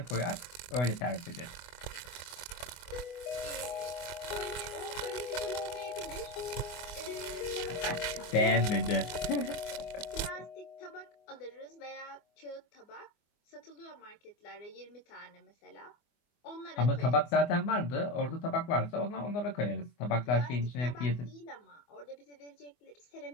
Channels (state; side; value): late; right; 24 ms